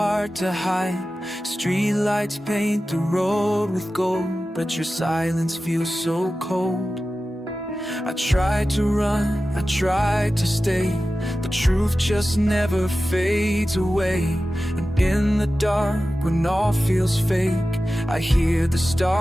to hide. Streetlights paint the road with gold, but your silence feels so cold. I tried to run, I tried to stay, the truth just never fades away. And in the dark, when all feels fake, I hear the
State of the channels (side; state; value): both; normal; correlation 0.94